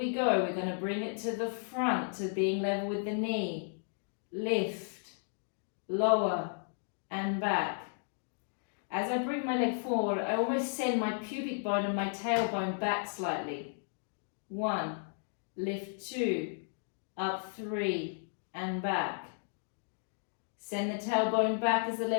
go. We're going to bring it to the front, to being level with the knee. Lift, lower, and back. As I bring my leg forward, I almost send my pubic bone and my tailbone back slightly. 1, lift 2, up 3, and back. Send the tailbone back as the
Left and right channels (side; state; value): right; silent; digital silence